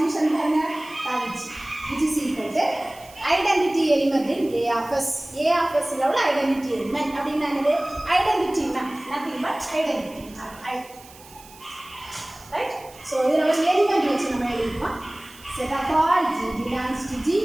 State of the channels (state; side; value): noise; right; hiss, 22 dB below the sound